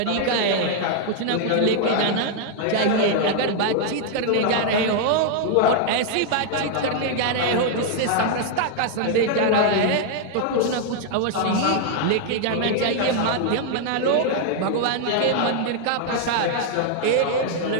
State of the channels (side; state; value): both; different; correlation 0.00